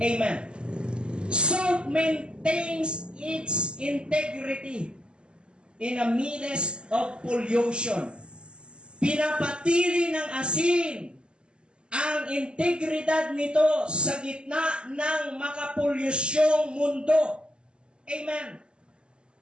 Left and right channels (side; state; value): left; late; 0.050 ms